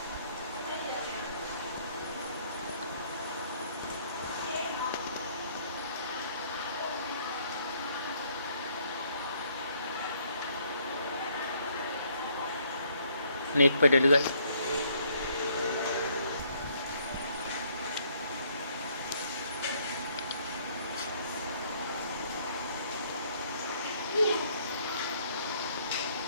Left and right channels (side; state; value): both; inverted; correlation -0.66